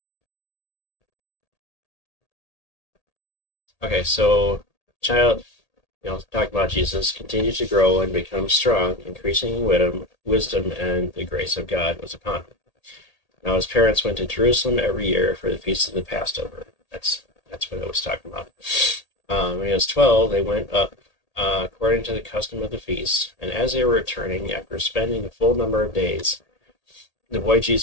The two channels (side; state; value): right; late; 1.8 ms